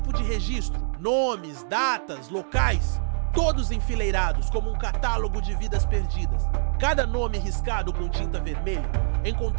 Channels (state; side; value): silent; left; digital silence